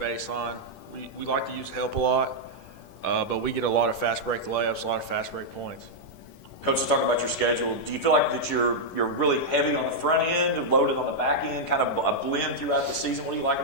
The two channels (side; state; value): right; late; 10 ms